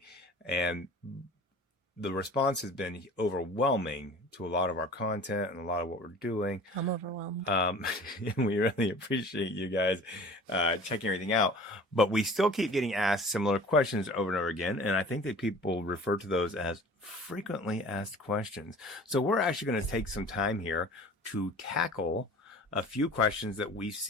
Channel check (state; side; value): normal; both; correlation 0.44